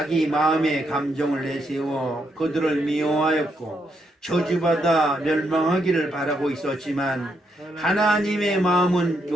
마음의 감정을 내세워 그들을 미워하였고 저주받아 멸망하기를 바라고 있었지만 하나님의 마음은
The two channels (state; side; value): normal; both; correlation 0.78